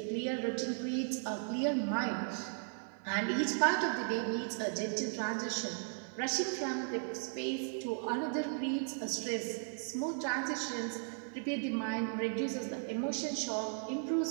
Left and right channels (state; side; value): silent; left; 54 dB below the other